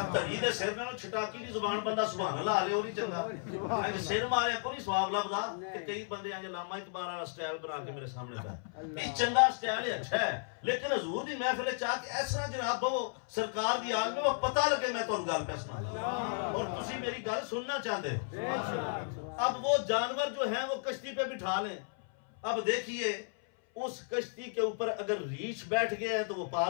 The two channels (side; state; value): right; silent; 55 dB below the other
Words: تری دے سر نال چھٹاکی دی زبان بندہ سبحان اللہ لے او نہیں چنگا انج سر مارے کو نہیں سواب لبدا کہ کئی بندے انج علامہ اقبال والا سٹائل بنا کے میرے سامنے پہ یہ چنگا سٹائل ہے اچھا ہے لیکن حضور دی محفل چاہ کے اس طرح جناب وہ سرکار دی آگ میں وہ پتہ لگے میں تانوں گل پہ سنا اور تسی میری گل سننا چاہتے ہو اب وہ جانور جو ہیں وہ کشتی پہ بٹھا لیں اب دیکھیے اس کشتی کے اوپر اگر ریچھ بیٹھ گیا ہے تو وہ